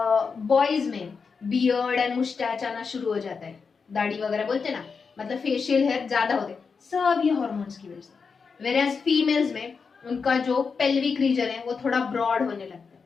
boys में बियर्ड एंड मुस्टैच आना शुरू हो जाता है, दाढ़ी वगैरह बोलते हैं ना, मतलब फेशियल हेयर ज्यादा होते हैं, सब ये हार्मोन्स की वजह से। वेराज फीमेल्स में उनका जो पेल्विक रीजन है वो थोड़ा ब्रॉड होने लगता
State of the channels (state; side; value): quieter; right; 5.3 dB